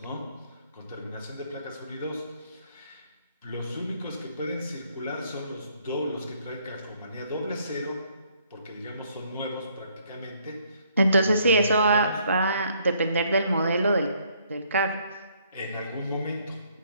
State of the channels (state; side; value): inverted; both; correlation -0.66